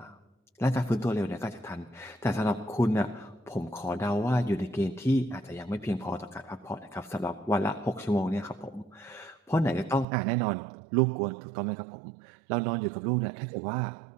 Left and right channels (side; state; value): left; drops out; at 10.1 s